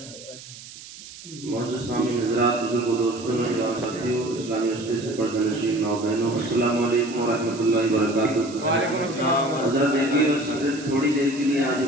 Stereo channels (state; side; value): noise; right; hiss, 16 dB below the sound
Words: سامعین حضرات، بزرگوں، دوستوں، نوجوان ساتھیوں، اسلامی رشتے سے پردہ نشین ماؤ بہنوں، السلام علیکم ورحمۃ اللہ وبرکاتہ۔ وعلیکم السلام۔ حضرت دیکھیے، بس صرف تھوڑی دیر کے لیے حاضر